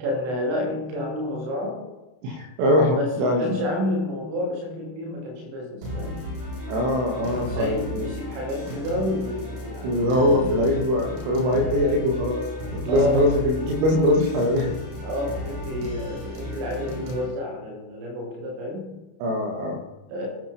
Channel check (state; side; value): late; left; 32 ms